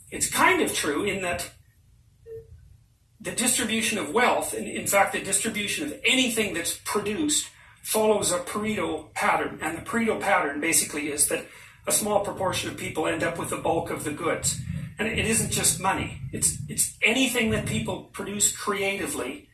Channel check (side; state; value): both; identical; correlation 1.00